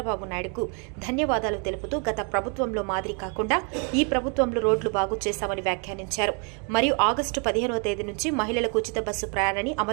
నాయుడుకు ధన్యవాదాలు తెలుపుతూ గత ప్రభుత్వంలో మాదిరి కాకుండా ఈ ప్రభుత్వంలో రోడ్లు బాగు చేశామని వ్యాఖ్యానించారు. మరియు ఆగస్టు 15వ తేదీ నుంచి మహిళలకు ఉచిత బస్సు ప్రయాణాన్ని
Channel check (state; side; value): quieter; left; 36.9 dB